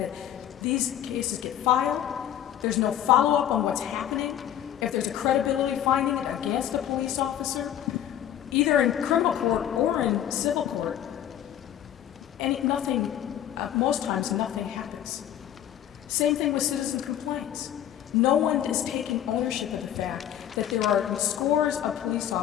these cases get filed, there's no follow-up on what's happening. If there's a credibility finding against a police officer, either in criminal court or in civil court, most times nothing happens. Same thing with citizen complaints. No one is taking ownership of the fact that there are scores of police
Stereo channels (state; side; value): quieter; right; 10.9 dB